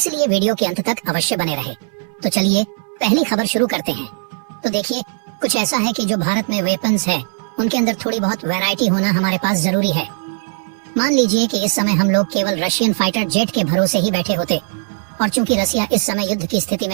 वीडियो के अंत तक अवश्य बने रहे। तो चलिए पहली खबर शुरू करते हैं। तो देखिए, कुछ ऐसा है कि जो भारत में वेपन्स है उनके अंदर थोड़ी बहुत वैरायटी होना हमारे पास जरूरी है। मान लीजिए कि इस समय हम लोग केवल रशियन फाइटर जेट के भरोसे ही बैठे होते, और चूंकि रसिया इस समय युद्ध की स्थिति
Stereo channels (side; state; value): left; silent; digital silence